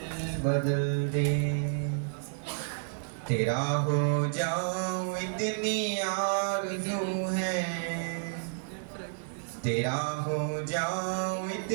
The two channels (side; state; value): left; silent; digital silence